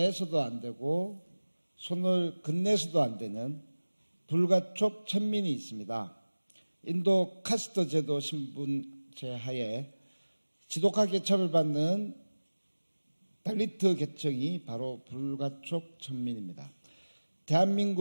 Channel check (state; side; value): inverted; both; correlation -1.00